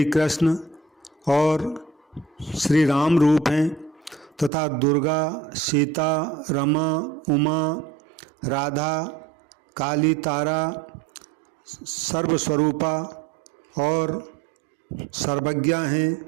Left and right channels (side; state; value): left; drops out; at 4.5 s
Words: कृष्ण और श्री राम रूप हैं तथा दुर्गा, सीता, रमा, उमा, राधा, काली, तारा सर्वस्वरूपा और सर्वज्ञा हैं।